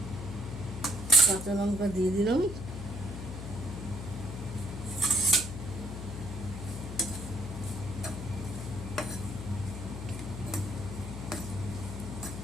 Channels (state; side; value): noise; left; hum, 7 dB below the sound